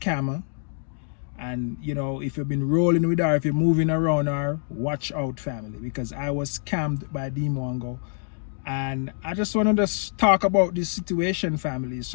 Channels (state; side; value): silent; right; digital silence